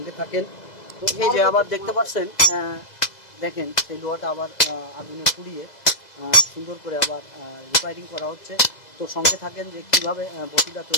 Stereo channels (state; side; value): late; right; 2.0 ms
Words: থাকেন। তো এই যে আবার দেখতে পাচ্ছেন, দেখেন সেই লোহাটা আবার আগুনে পুড়িয়ে সুন্দর করে আবার রিফাইনিং করা হচ্ছে। তো সঙ্গে থাকেন যে কীভাবে বটিটা